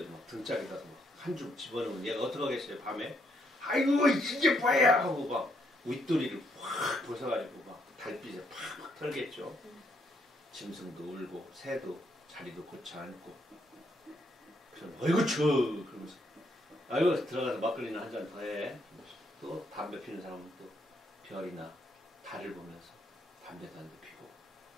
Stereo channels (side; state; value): both; normal; correlation 0.74